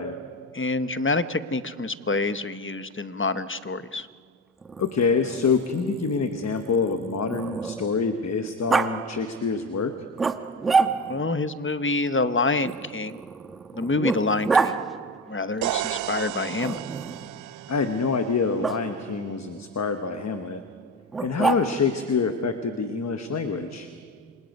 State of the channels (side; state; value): both; normal; correlation 0.23